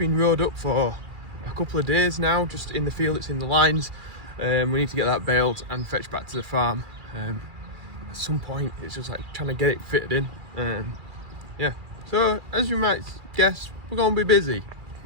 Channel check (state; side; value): late; left; 2.4 ms